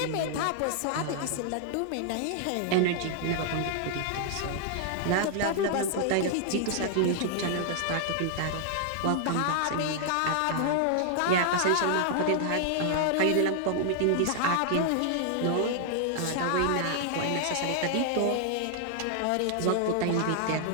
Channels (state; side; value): different; both; correlation -0.01